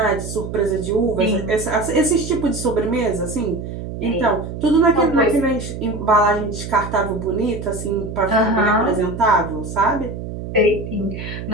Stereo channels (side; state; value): right; noise; hum, 8 dB below the sound